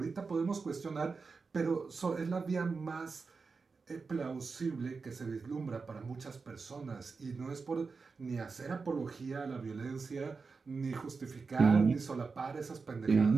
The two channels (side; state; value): left; quieter; 4.6 dB